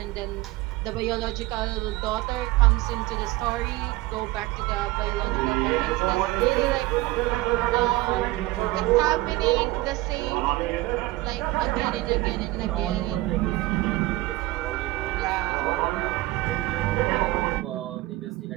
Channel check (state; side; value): quieter; left; 19.2 dB